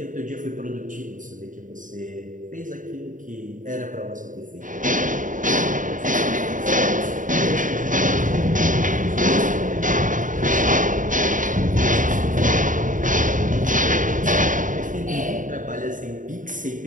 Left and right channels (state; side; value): late; left; 0.38 ms